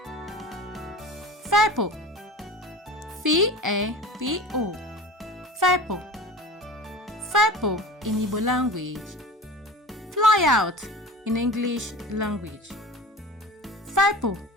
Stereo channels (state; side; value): normal; both; correlation 0.36